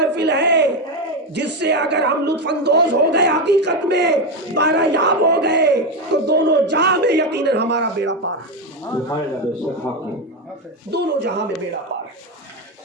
ہے جس سے اگر ہم لطف اندوز ہو گئے، حقیقت میں بارہ یاب ہو گئے، تو دونوں جہاں میں یقیناً ہمارا بیڑا پار ہے، دونوں جہاں میں بیڑا پار ہے۔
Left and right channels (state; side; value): normal; both; correlation 0.11